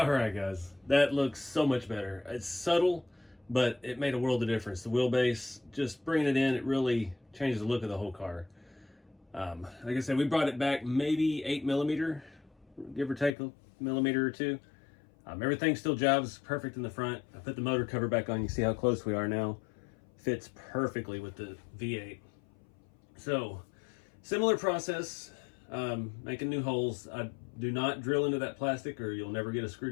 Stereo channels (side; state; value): right; drops out; at 13.3 s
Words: right, guys, that looks so much better. It's subtle, but it made a world of difference. The wheelbase, just bringing it in, it really changed the look of the whole car. Like I said, we brought it back maybe 8mm, give or take a millimeter or two. Everything still jobs perfect in the front. I put the motor cover back on. You see how close we are now. Fits perfectly with the V8. So, similar process, making new holes. I do not drill into that plastic or you'll never get a screw